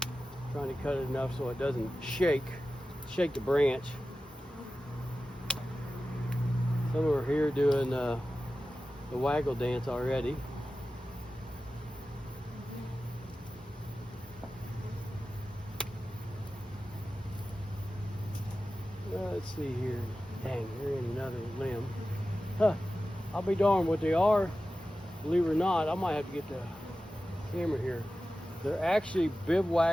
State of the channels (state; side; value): normal; both; correlation 0.94